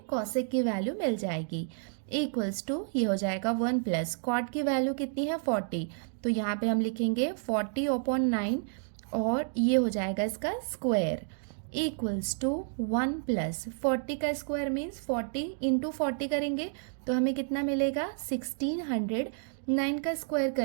कॉसेक की वैल्यू मिल जाएगी। इक्वल्स टू ये हो जाएगा 1 प्लस कॉट की वैल्यू कितनी है 40, तो यहाँ पे हम लिखेंगे 40/9 और ये हो जाएगा इसका स्क्वायर इक्वल्स टू 1 प्लस 40 का स्क्वायर मीन्स 40 इंटू 40 करेंगे तो हमें कितना मिलेगा 1600। 9 का स्क्वायर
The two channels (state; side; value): silent; left; digital silence